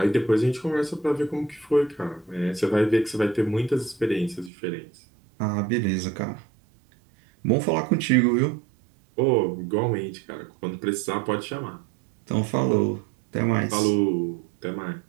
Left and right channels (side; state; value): left; drops out; at 4.5 s